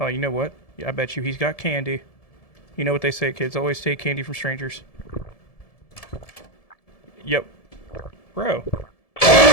you know what? Yeah, I bet you he's got candy. You know what they say, kids always take candy from strangers. Yep. Bro.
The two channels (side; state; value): right; late; 1.7 ms